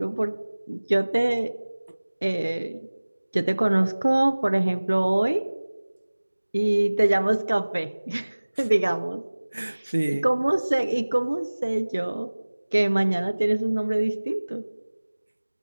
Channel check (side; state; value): both; inverted; correlation -1.00